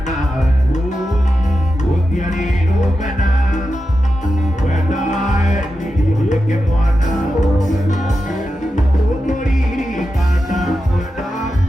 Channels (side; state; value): both; normal; correlation 0.90